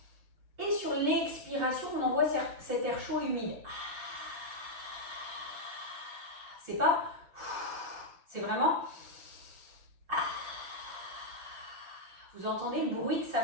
Et sur l'expiration, on envoie cet air chaud et humide. C'est pas, c'est vraiment. Vous entendez le bruit que ça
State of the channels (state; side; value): late; left; 6.5 ms